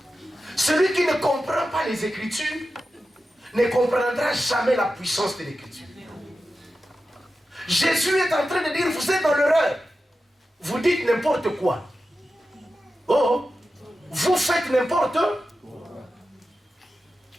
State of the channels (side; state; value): both; normal; correlation 0.92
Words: Celui qui ne comprend pas les Écritures ne comprendra jamais la puissance de l'Écriture. Jésus est en train de dire, vous êtes dans l'erreur. Vous dites n'importe quoi. Oh, vous faites n'importe quoi.